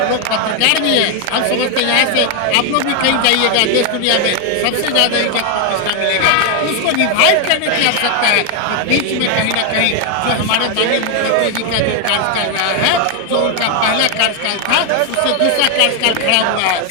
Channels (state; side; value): different; both; correlation 0.01